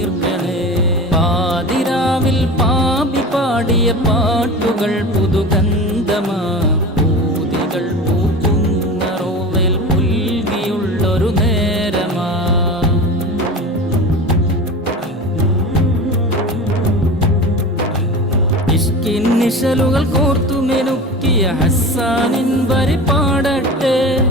പാതിരാവിൽ പാപി പാടിയ പാട്ടുകൾ പുതുഗന്ധമാ. പൂതികൾ പൂക്കുന്ന റോവയിൽ പുൽകിയുള്ളൊരു നേരമാ. ഇഷ്കിൻ നിശലുകൾ കോർത്തുമെനുക്കിയ ഹസ്സാനിൻ വരി പാടട്ടെ.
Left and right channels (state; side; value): normal; both; correlation 0.32